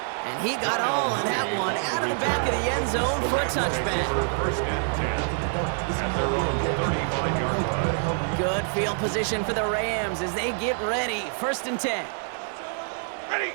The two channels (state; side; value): silent; left; 61 dB below the other